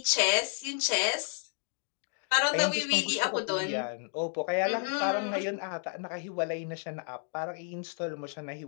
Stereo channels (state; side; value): silent; right; 57 dB below the other